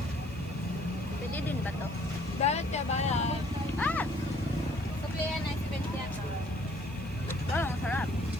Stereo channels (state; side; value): noise; right; hiss, 25 dB below the sound